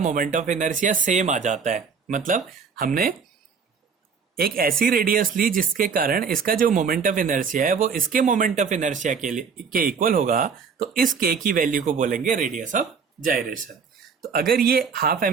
ऑफ इनर्शिया सेम आ जाता है, मतलब हमने एक ऐसी रेडियस ली जिसके कारण इसका जो मोमेंट ऑफ इनर्शिया है वो इसके मोमेंट ऑफ इनर्शिया के इक्वल होगा, तो इस k की वैल्यू को बोलेंगे रेडियस ऑफ जायरेशन। तो अगर ये हाफ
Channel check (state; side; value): quieter; left; 5.9 dB